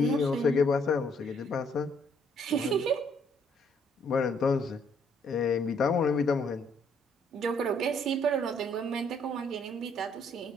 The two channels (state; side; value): normal; both; correlation 0.67